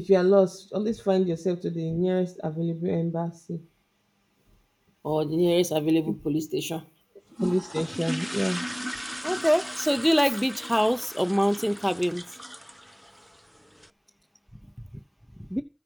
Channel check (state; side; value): identical; both; correlation 1.00